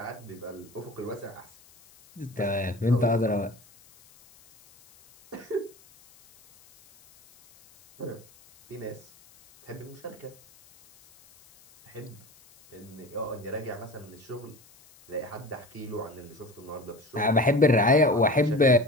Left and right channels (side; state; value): left; noise; hiss, 26 dB below the sound